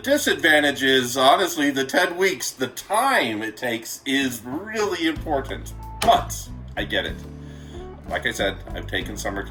is, honestly, the 10 weeks, the time it takes is really important. But I get it. Like I said, I've taken summer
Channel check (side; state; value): both; identical; correlation 1.00